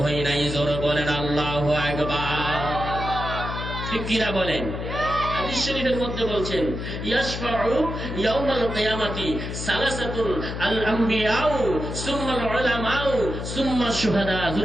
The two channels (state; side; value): noise; left; hum, 6 dB below the sound